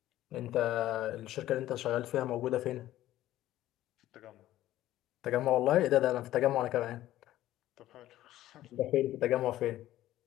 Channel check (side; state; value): right; quieter; 14.3 dB